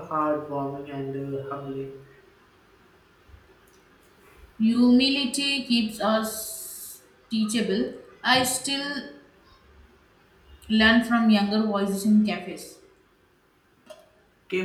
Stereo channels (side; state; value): both; identical; correlation 1.00